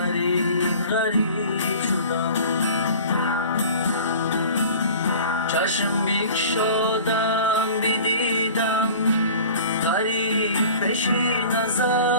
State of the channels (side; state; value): both; inverted; correlation -0.43